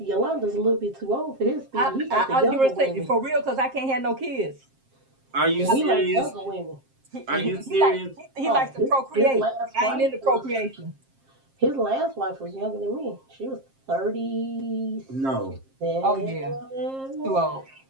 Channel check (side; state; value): left; late; 7.5 ms